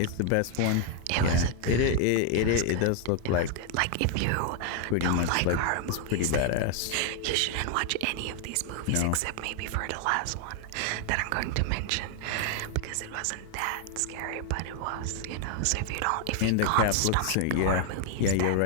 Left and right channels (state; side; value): different; both; correlation 0.00